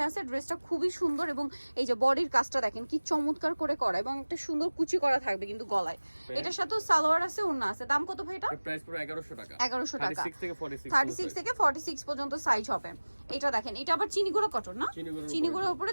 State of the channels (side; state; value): both; inverted; correlation -1.00